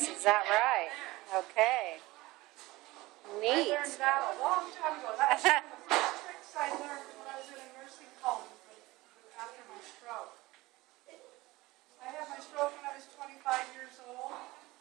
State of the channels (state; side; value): quieter; left; 20.0 dB